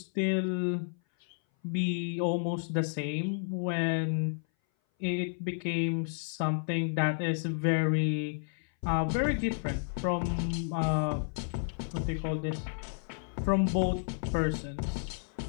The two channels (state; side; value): silent; right; 57 dB below the other